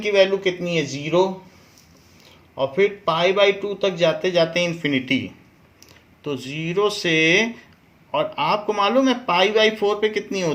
की वैल्यू कितनी है, 0, और फिर π/2 तक जाते जाते इन्फिनिटी, तो 0 से, और आपको मालूम है π/4 पे कितनी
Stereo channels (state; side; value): identical; both; correlation 1.00